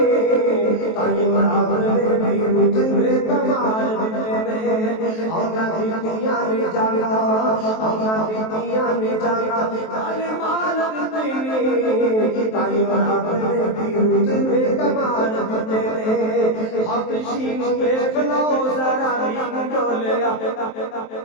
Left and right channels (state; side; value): late; right; 23 ms